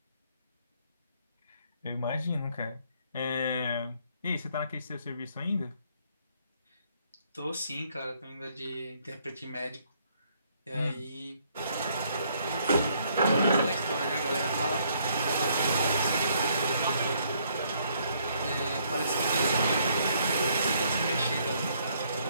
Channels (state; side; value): inverted; both; correlation -0.68